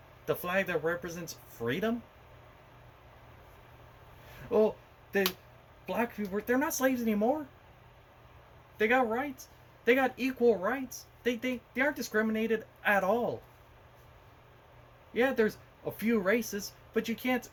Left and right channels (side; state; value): both; identical; correlation 1.00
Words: The flag that represents freedom. Well, the black people, they're not slaves anymore. They got rights. They got equal rights. They aren't discriminated at all. Yeah, there's a few races, but you can't